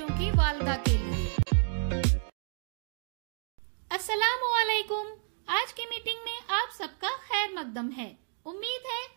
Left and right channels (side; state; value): left; silent; 57 dB below the other